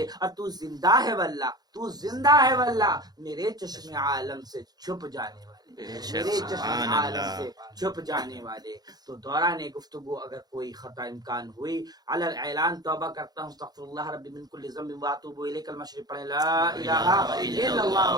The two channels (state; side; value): late; left; 0.19 ms